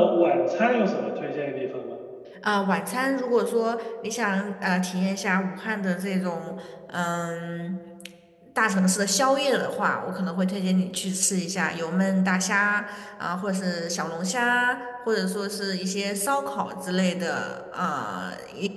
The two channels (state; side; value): identical; both; correlation 1.00